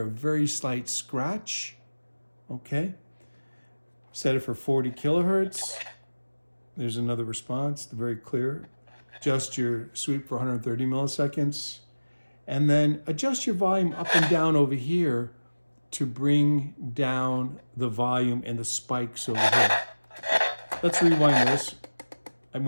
a very slight scratch. Okay. Set it for 40 kilohertz. There's another response, very clear. Adjust your sweep for 130 milliseconds. And then adjust your volume up and down over here to bring down the volume and the spikes over here. Let's rewind this. I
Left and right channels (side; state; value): both; inverted; correlation -1.00